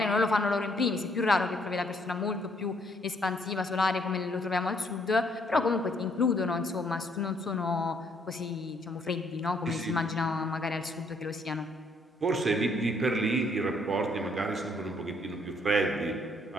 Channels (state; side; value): normal; both; correlation 0.68